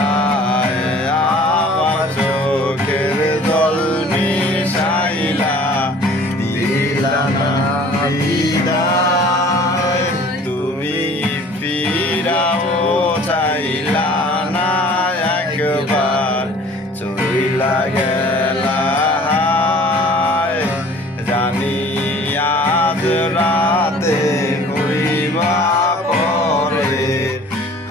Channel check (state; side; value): normal; both; correlation 0.49